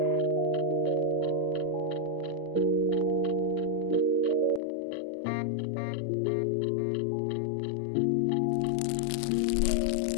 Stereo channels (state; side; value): drops out; right; at 4.6 s